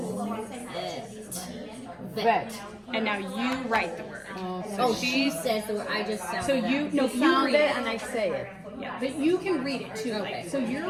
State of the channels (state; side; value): identical; both; correlation 1.00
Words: Vet. And now you write the word. Oh, she says the word. I just sound So it you, out. no, you Sound read it it. and I say it. Yeah, but you can read it too. Like, so you're